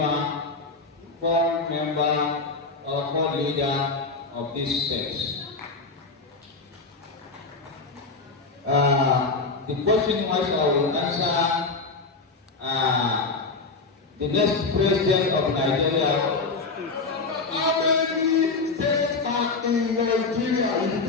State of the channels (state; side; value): quieter; right; 4.0 dB